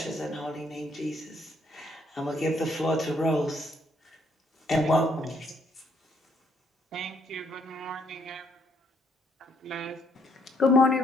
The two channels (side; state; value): both; normal; correlation 0.69